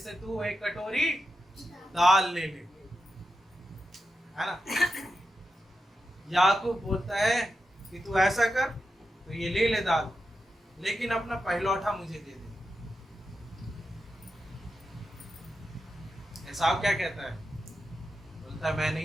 तू एक कटोरी दाल ले ले, है ना? याकूब बोलता है कि तू ऐसा कर, तो ये ले ले दाल, लेकिन अपना पहलौठा मुझे दे दे। एसाव क्या कहता है? बोलता है मैं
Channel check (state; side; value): normal; both; correlation 0.89